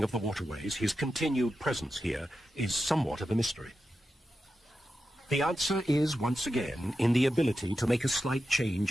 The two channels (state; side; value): normal; both; correlation 0.90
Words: of the waterways, his continued presence here is somewhat of a mystery. The answer is, once again, in the ability to make a slight